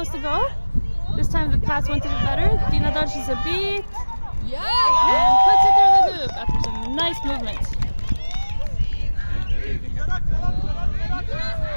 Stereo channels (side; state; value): both; inverted; correlation -1.00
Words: a goal. This time the pass went a bit better. Dina dodges a beat and puts it through the hoop after some nice movement.